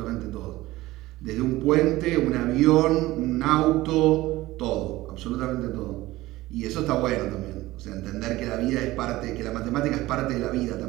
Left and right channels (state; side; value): quieter; left; 17.9 dB